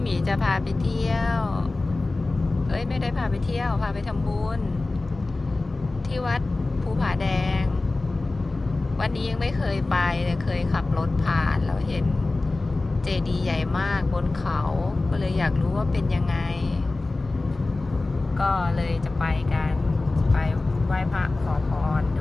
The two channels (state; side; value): quieter; right; 3.2 dB